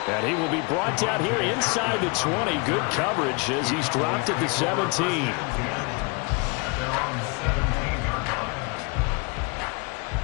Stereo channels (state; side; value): quieter; right; 30.2 dB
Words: And he will be brought down here inside the 20. Good coverage as he's dropped at the 17.